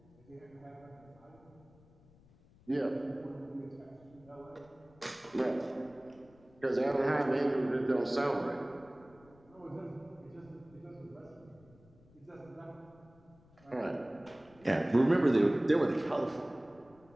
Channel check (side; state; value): left; noise; rumble, 27 dB below the sound